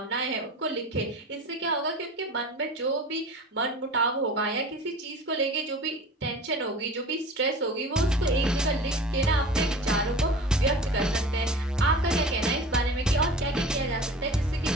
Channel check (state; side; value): normal; both; correlation 0.38